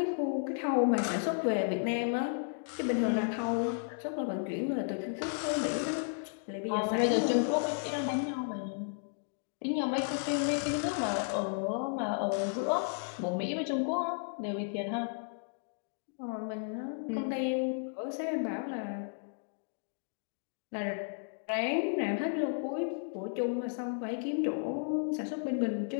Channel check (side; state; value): right; silent; digital silence